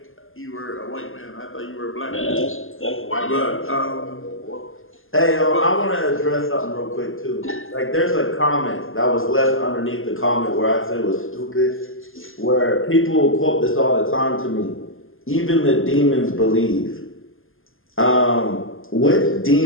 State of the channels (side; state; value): right; late; 0.59 ms